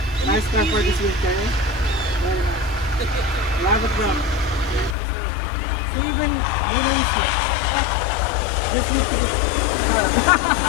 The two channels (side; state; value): right; drops out; at 5.0 s